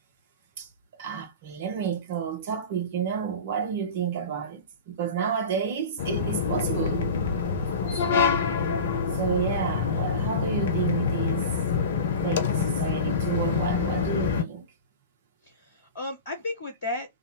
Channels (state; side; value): inverted; both; correlation -0.31